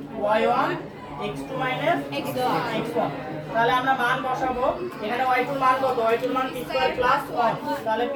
y1 x2 - x1। তাহলে আমরা মান বসাবো। এখানে y2 এর মান কত? y2 এর মান p² + 1। তাহলে p²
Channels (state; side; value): identical; both; correlation 1.00